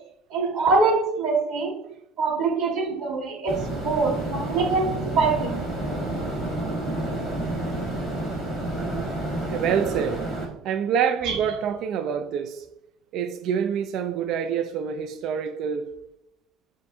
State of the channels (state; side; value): quieter; left; 4.1 dB